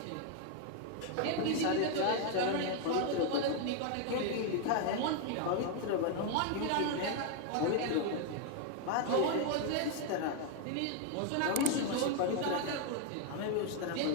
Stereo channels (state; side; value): different; both; correlation 0.01